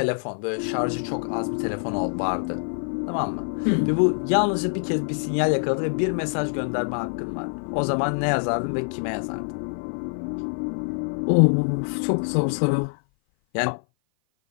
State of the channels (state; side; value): silent; right; 56 dB below the other